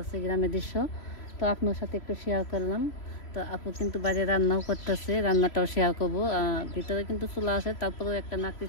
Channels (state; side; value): late; right; 3.0 ms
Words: গ্রামের দৃশ্য। তো আপনার সাথে একটু শেয়ার করলাম। তো আপু কিন্তু বাইরে রান্নাও করতেছে, রান্নাটাও শেয়ার করবো। ভিতরে কিন্তু চুলা আছে, তারপরেও একটা নাকড়ি